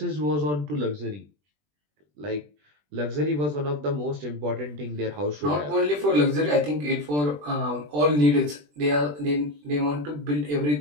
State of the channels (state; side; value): late; left; 20 ms